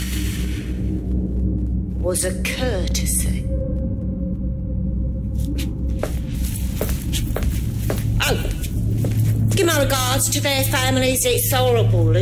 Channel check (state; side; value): identical; both; correlation 1.00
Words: was a courtesy. regards to their families, it's horrible